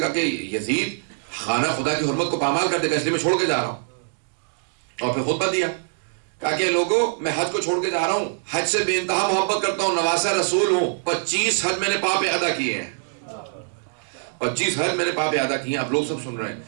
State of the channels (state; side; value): silent; left; digital silence